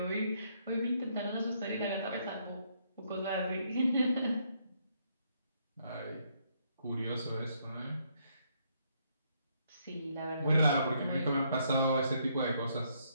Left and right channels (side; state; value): both; inverted; correlation -0.72